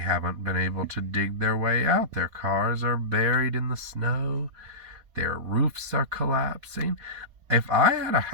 been able to dig their way out. Their cars are buried in the snow. Their roofs are collapsing. If I had a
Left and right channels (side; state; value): left; late; 4.2 ms